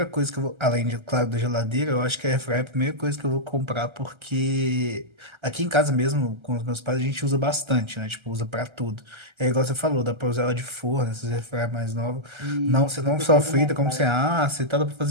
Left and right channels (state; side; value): late; left; 1.3 ms